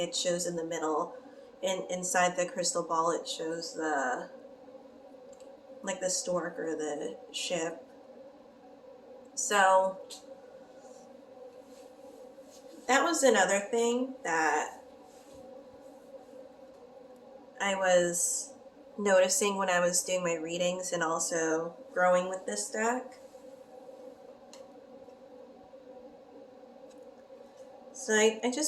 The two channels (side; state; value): both; identical; correlation 1.00